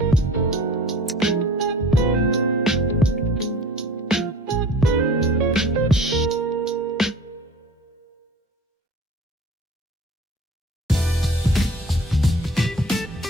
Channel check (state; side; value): normal; both; correlation 0.43